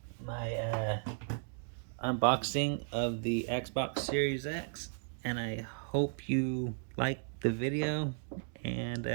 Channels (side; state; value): left; silent; digital silence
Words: my unboxing of the Xbox Series X, and I hope you like the video